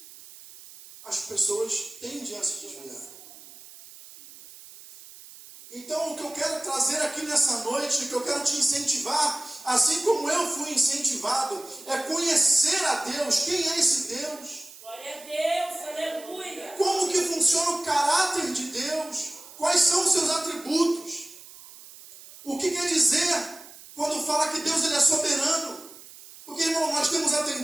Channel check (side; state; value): right; noise; hiss, 18 dB below the sound